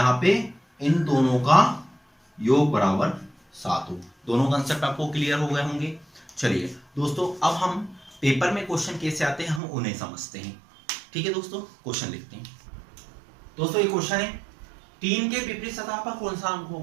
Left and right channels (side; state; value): left; drops out; at 9.6 s